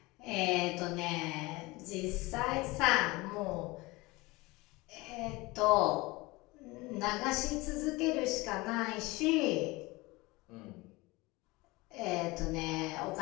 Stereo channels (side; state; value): right; quieter; 22.5 dB